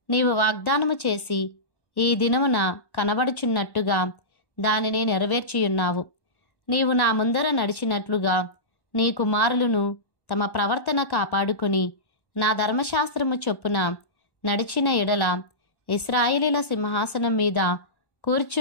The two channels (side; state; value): right; late; 1.1 ms